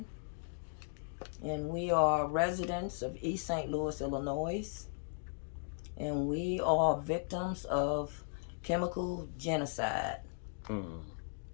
And we are residents of East St. Louis, Illinois. And we are victims of chemical genocide. For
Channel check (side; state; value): right; silent; digital silence